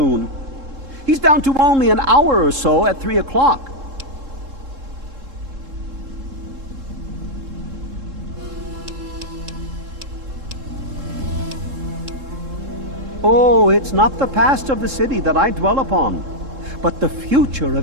He's down to only an hour or so at 3 o'clock. Oh, it's not the past of the city that I dwell upon, but the future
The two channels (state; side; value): late; left; 3.7 ms